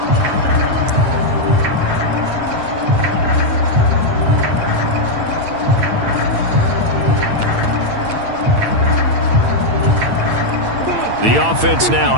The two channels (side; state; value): left; late; 8.8 ms